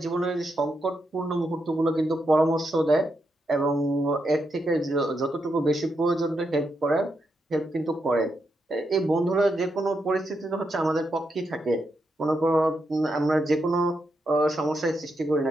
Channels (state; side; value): normal; both; correlation 0.83